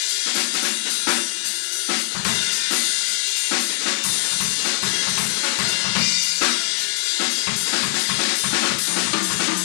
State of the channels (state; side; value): silent; right; digital silence